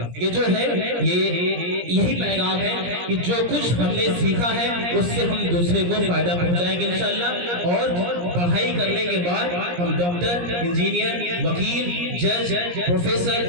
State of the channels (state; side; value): late; left; 17 ms